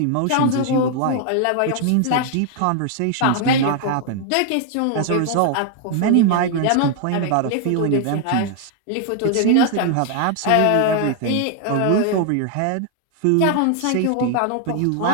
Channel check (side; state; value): both; different; correlation 0.00